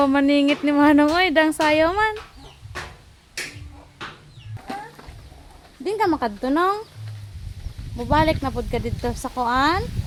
maningit ni Manong oy, dang sayo man. Din ka makadto nong. Mubalik na pud ka dito sa kuan.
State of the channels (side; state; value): both; identical; correlation 1.00